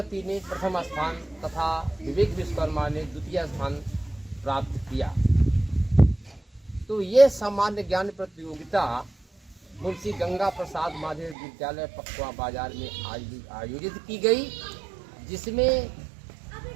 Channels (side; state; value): left; drops out; at 11.4 s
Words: ने प्रथम स्थान तथा विवेक विश्वकर्मा ने द्वितीय स्थान प्राप्त किया। तो ये सामान्य ज्ञान प्रतियोगिता मुंशी गंगा प्रसाद माध्यमिक विद्यालय पखवा बाजार में आयोजित की गई, जिसमें